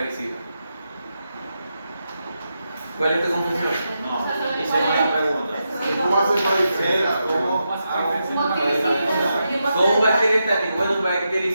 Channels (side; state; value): both; inverted; correlation -0.86